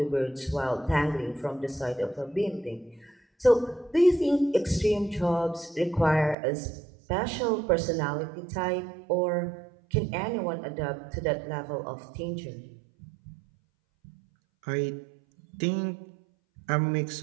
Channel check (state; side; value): drops out; left; at 6.4 s